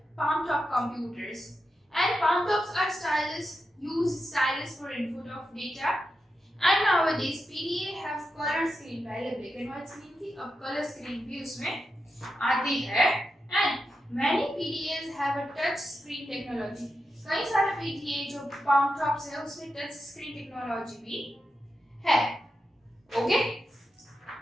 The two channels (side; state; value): both; normal; correlation 0.88